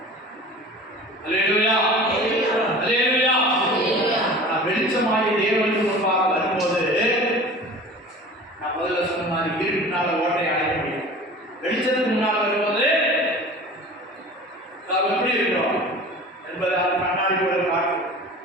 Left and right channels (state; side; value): normal; both; correlation 0.40